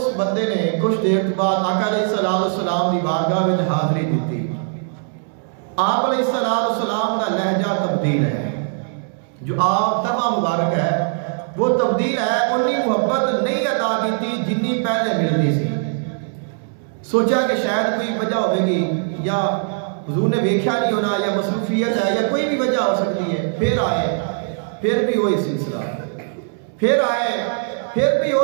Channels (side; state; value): left; silent; 65 dB below the other